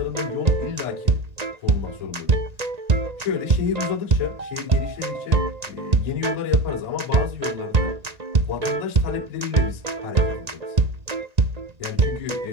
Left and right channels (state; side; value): late; left; 1.9 ms